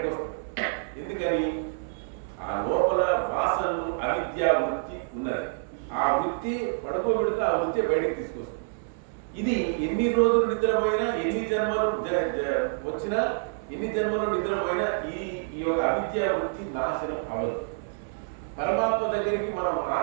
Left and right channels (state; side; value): silent; left; 59 dB below the other